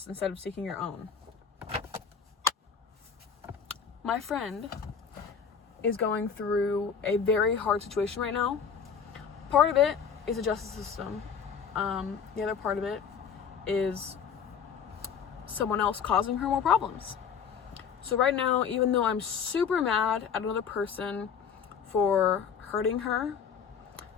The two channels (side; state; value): right; quieter; 6.9 dB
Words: instead of seeking your own? My friend is going through a very hard situation right now. Part of it is the justice system. The other part of it is someone else causing her more problems. So right now, even though I'm super mad at another person for hurting her,